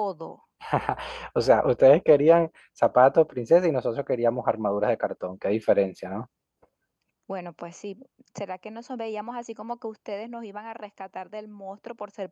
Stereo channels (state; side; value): identical; both; correlation 1.00